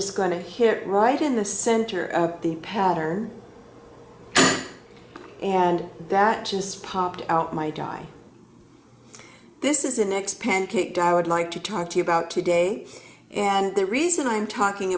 going to hit right in the center of the pattern, and that just popped out my die. This is the next pancake die I would like to talk to you about today, and the reason I'm talking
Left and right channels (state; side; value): identical; both; correlation 1.00